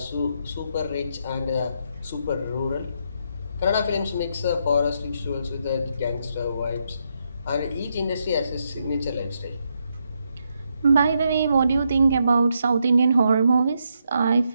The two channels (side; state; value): both; inverted; correlation -0.80